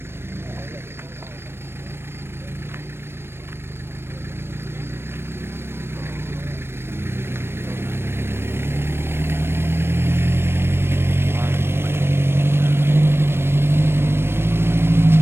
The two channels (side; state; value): left; late; 0.12 ms